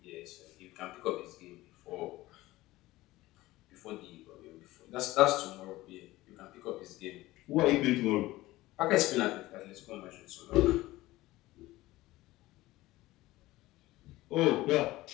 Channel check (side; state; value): right; quieter; 17.8 dB